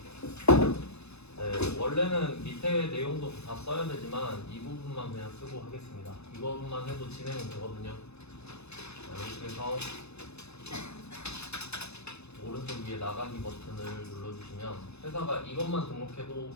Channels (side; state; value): right; late; 0.80 ms